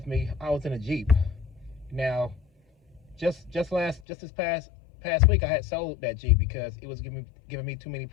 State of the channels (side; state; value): right; drops out; at 4.0 s